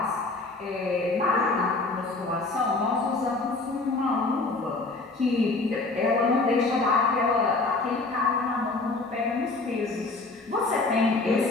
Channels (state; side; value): quieter; right; 3.5 dB